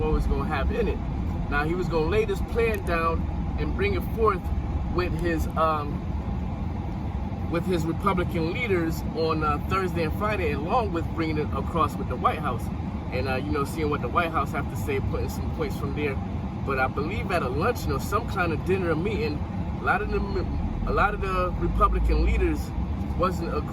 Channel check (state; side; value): identical; both; correlation 1.00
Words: was going to have in it. Now, he was going to lay this plan down and bring it forth with his Republican leaders on Thursday and Friday, along with bringing it across with the White House and seeing what the White House have to say, putting some points from there. But I believe at a luncheon or some kind of dinner or meeting, a lot of the Republican leaders wasn't